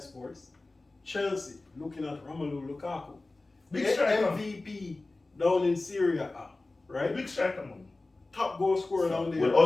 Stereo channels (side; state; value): right; quieter; 3.2 dB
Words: Chelsea looking at Romelu Lukaku, Big the striker. MVP down in Syria, right? Big striker, man. Top goal scorer down there. Will